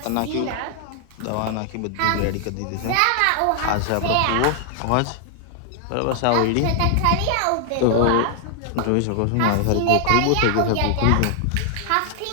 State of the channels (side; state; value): both; different; correlation 0.00